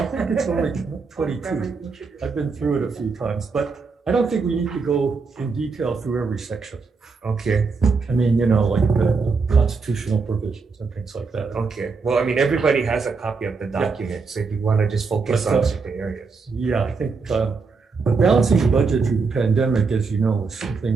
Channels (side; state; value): left; quieter; 4.6 dB